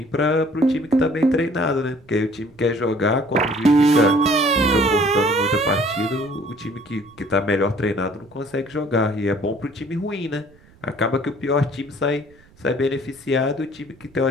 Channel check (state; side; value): noise; right; rumble, 28 dB below the sound